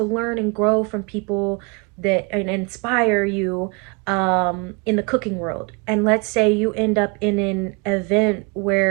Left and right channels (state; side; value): quieter; left; 30.6 dB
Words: learn and grow from people that and inspire you in the cooking world. And let's say you end up in an event